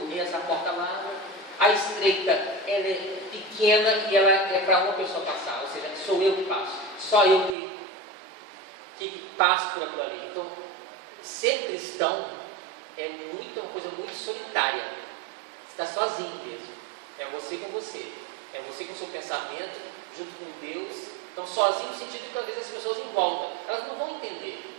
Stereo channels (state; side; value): drops out; left; at 7.6 s